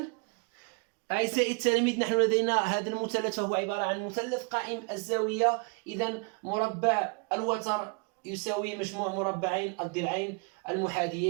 أعزائي التلاميذ، نحن لدينا هذا المثلث فهو عبارة عن مثلث قائم الزاوية. إذن مربع الوتر يساوي مجموع مربعين الضلعين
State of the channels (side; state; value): left; quieter; 33.4 dB